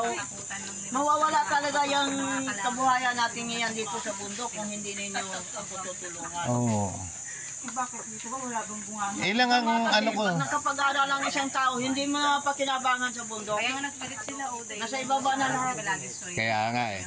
mawawala talaga yung kabuhayan natin ngayon dito sa bundok kung hindi ninyo ako tutulungan. bakit dito ba wala bang bunga Ilang ang ko. Pag nakapag-aral ang isang tao, hindi mo napakinabangan sa bundok. kaya nga nagpalit sila Nasa ibaba na lahat. Kaya nga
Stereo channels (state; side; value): identical; both; correlation 1.00